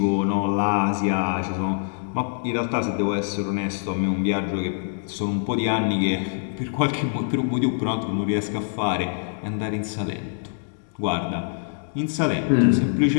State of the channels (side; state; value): right; silent; digital silence